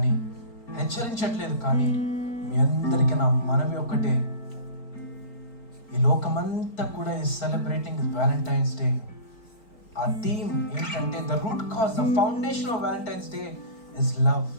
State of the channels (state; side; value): late; right; 4.4 ms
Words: కానీ మీ అందరికీ నా మనవి ఒకటే. ఈ లోకమంతా కూడా ఈ సెలబ్రేటింగ్ వ్యాలంటైన్స్ డే. ఆ థీమ్ ఏంటంటే the root cause, the foundation of Valentine's day is love.